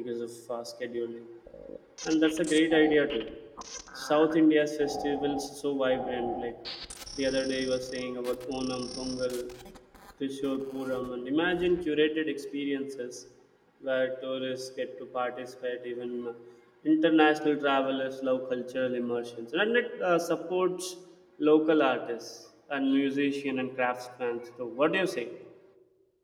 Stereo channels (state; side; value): identical; both; correlation 1.00